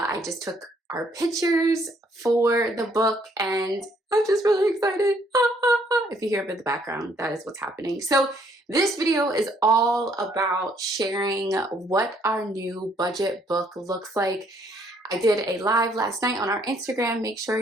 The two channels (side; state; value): both; normal; correlation 0.67